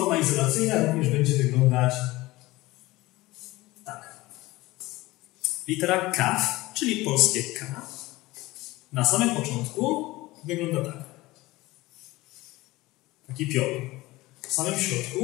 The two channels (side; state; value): right; quieter; 19.5 dB